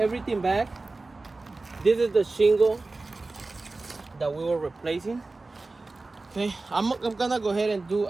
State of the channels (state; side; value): quieter; left; 3.4 dB